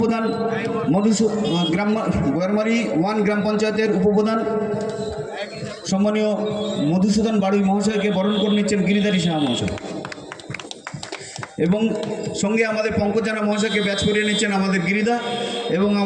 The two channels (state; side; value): identical; both; correlation 1.00